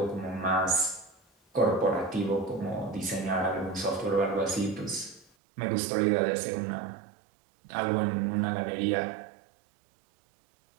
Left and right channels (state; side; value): drops out; left; at 5.2 s